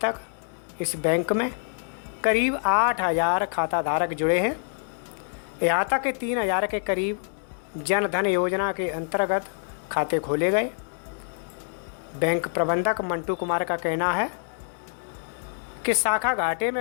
इस बैंक में करीब 8000 खाताधारक जुड़े हैं। यहाँ तक कि 3000 के करीब जनधन योजना के अंतर्गत खाते खोले गए। बैंक प्रबंधक मंटू कुमार का कहना है कि शाखा घाटे में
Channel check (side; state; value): right; silent; digital silence